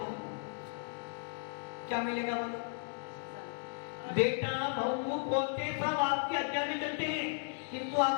क्या मिलेगा? बोलो। बेटा बहू पोते सब आपकी आज्ञा में चलते हैं किंतु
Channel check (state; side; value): silent; right; 54 dB below the other